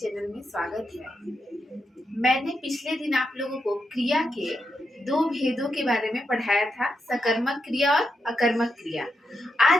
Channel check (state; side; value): normal; both; correlation 0.85